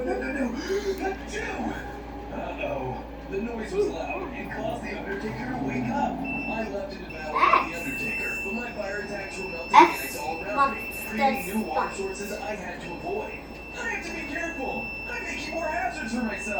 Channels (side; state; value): both; identical; correlation 1.00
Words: nose. No. Uh-oh. The noise was loud and caused the Undertaker to wake up. I left it to battle with the Undertaker, but my fire attacks were melting ice all around me, creating new water sources I had to avoid. I have to be careful. I'm making more hazards for